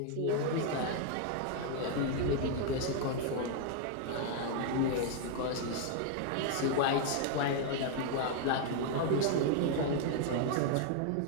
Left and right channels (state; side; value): different; both; correlation 0.00